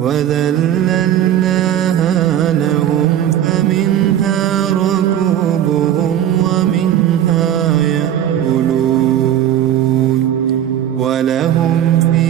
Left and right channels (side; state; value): left; quieter; 10.9 dB